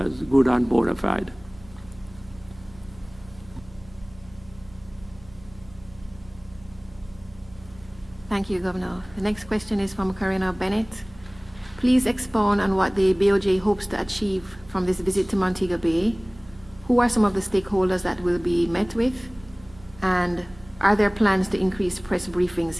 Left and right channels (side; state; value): right; noise; hum, 22 dB below the sound